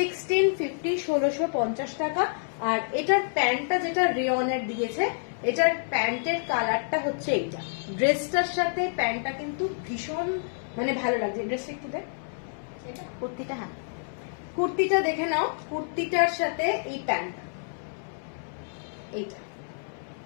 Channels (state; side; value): silent; right; 59 dB below the other